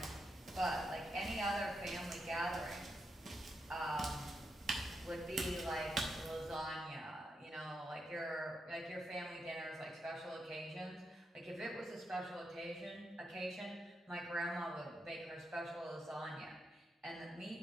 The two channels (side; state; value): both; normal; correlation 0.84